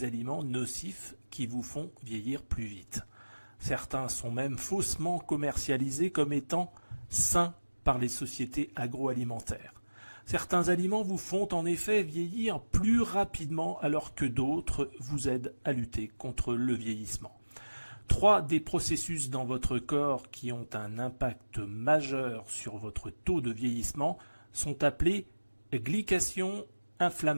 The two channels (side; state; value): both; inverted; correlation -1.00